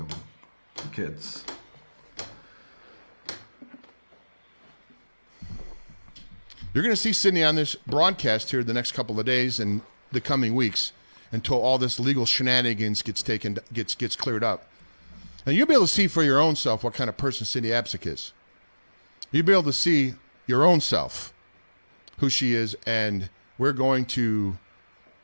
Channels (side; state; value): both; inverted; correlation -1.00